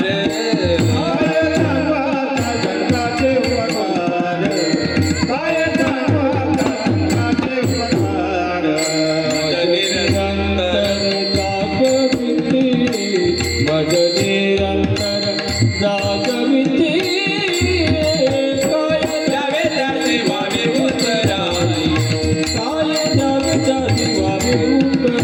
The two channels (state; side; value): identical; both; correlation 1.00